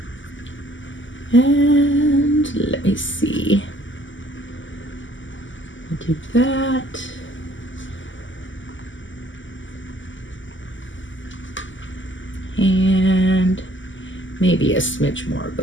And let me see. We'll do that. And maybe a smidge more of the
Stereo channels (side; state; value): right; late; 0.55 ms